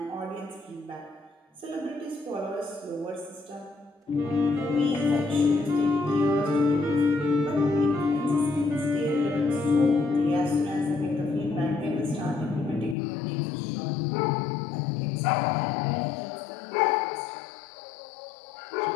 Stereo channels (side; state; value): right; drops out; at 13.0 s